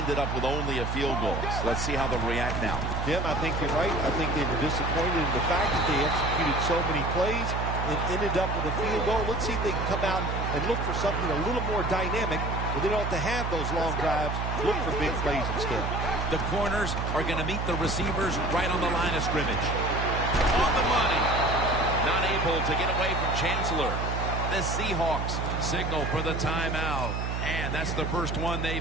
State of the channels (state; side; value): noise; right; hum, 2 dB below the sound